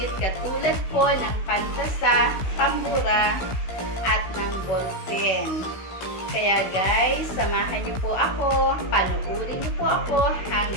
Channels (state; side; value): late; right; 16 ms